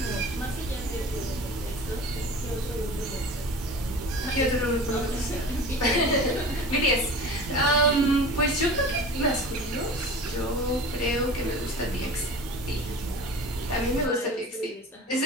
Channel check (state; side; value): normal; both; correlation 0.37